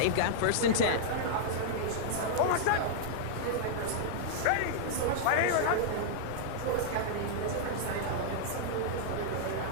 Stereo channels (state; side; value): different; both; correlation -0.01